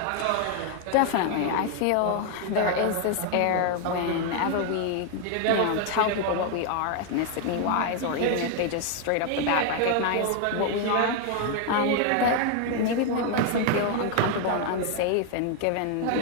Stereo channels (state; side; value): different; both; correlation 0.00